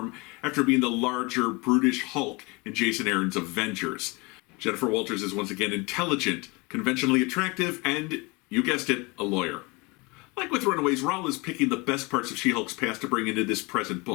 after being the larger, brutish Hulk in Jason Aaron's Avengers. Jennifer Walters is once again intelligent, conventionally attractive, and, you guessed it, a lawyer. Like with Runaways, Rowell is picking the best parts of She-Hulk's past to bring into this present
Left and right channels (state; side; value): quieter; right; 26.3 dB